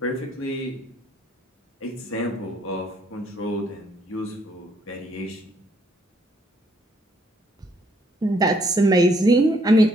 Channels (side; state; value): both; normal; correlation 0.68